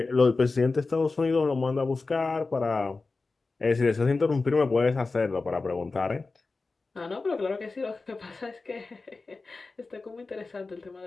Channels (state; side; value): quieter; right; 3.8 dB